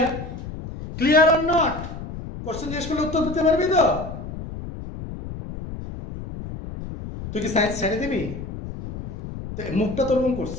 Clear or not? Question জিজ্ঞেস করলে উত্তর দিতে পারবি তো? তুই কি science ছেড়ে দিবি? মুখটা তোর মন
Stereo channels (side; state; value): left; noise; rumble, 9 dB below the sound